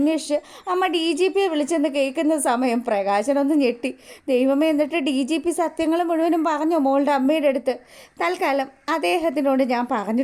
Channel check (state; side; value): identical; both; correlation 1.00